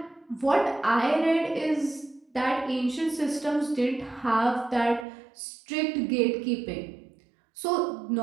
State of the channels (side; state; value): left; drops out; at 5.1 s